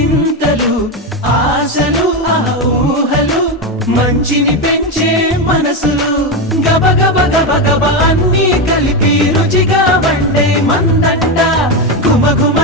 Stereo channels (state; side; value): normal; both; correlation 0.12